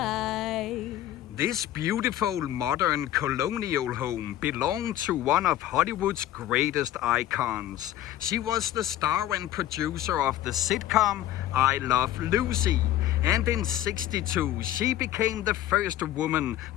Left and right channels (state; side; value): quieter; right; 13.2 dB